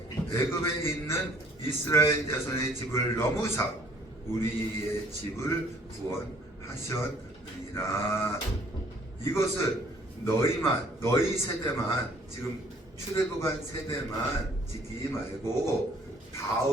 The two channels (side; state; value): both; normal; correlation 0.58